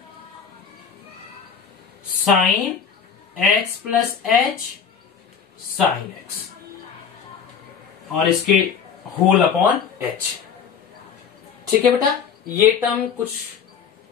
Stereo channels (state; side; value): quieter; right; 6.9 dB